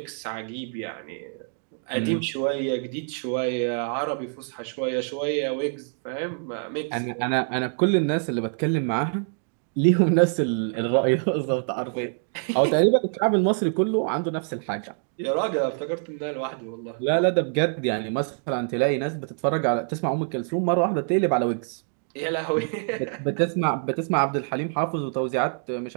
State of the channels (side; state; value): left; silent; 61 dB below the other